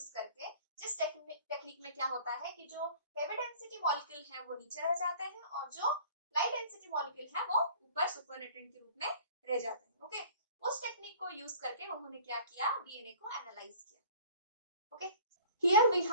करके, जिस टेक्निक में क्या होता है कि जो हेवी डेंसिटी मॉलिक्यूल है वो नीचे रह जाते हैं और जो लाइट डेंसिटी मॉलिक्यूल है वो ऊपर सुपरनेटेंट के रूप में रह जाते हैं। ओके, उस टेक्निक को यूज करके उन्होंने क्या किया, डीएनए को एनालाइज किया। Okay, here we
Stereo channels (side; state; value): both; inverted; correlation -0.47